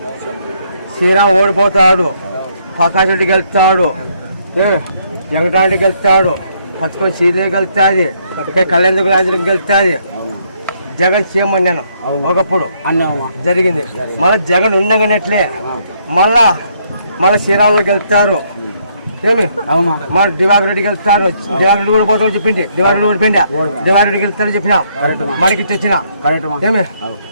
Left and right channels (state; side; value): inverted; both; correlation -0.71